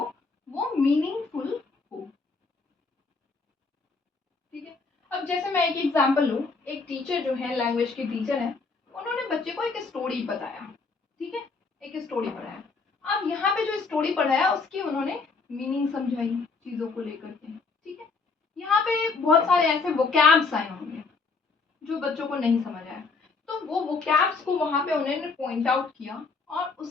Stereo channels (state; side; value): quieter; right; 4.3 dB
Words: वो मीनिंगफुल हो, ठीक है। अब जैसे मैं एक एग्जांपल लूँ, एक टीचर जो है लैंग्वेज के टीचर है, उन्होंने बच्चे को एक स्टोरी बताया, ठीक है, एक स्टोरी पढ़ाया। अब यहाँ पे जो स्टोरी पढ़ाया उसकी उन्होंने मीनिंग समझाई चीजों को लेकर के, ठीक है। यहाँ पे बहुत सारे ऐसे वोकैब्स आए होंगे जो बच्चों को नहीं समझ आया, तो वो वोकैब्स को वहां पे उन्होंने पॉइंट आउट किया और